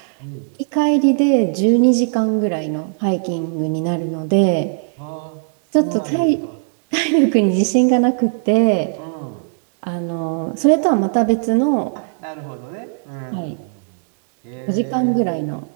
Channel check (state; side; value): silent; left; digital silence